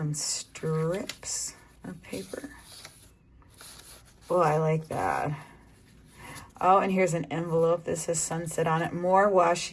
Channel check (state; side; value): identical; both; correlation 1.00